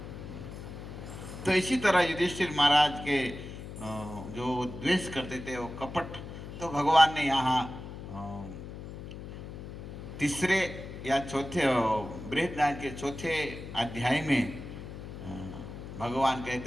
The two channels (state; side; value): noise; left; hum, 11 dB below the sound